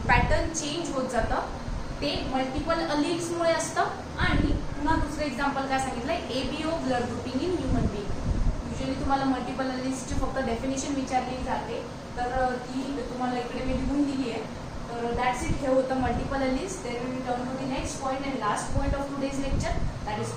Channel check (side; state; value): both; identical; correlation 1.00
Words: पॅटर्न चेंज होत जातं ते मल्टिपल अलील्समुळे असतं. आणि पुन्हा दुसरं एक्झाम्पल काय सांगितलंय, ABO blood grouping in human being. Usually तुम्हाला मल्टिपल अलील्सची फक्त डेफिनेशन विचारली जाते, तर ती तुम्हाला इकडे मी लिहून दिली आहे. तर दॅट्स इट. हे होतं multiple alleles. Then we turn to the next point and last point of today's lecture, that